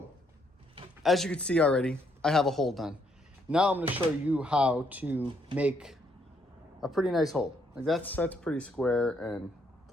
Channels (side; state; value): both; normal; correlation 0.72